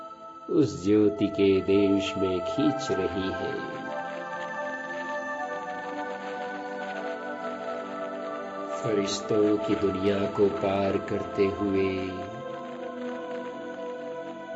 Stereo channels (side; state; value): both; identical; correlation 1.00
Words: उस ज्योति के देश में खींच रही है। फरिश्तों की दुनिया को पार करते हुए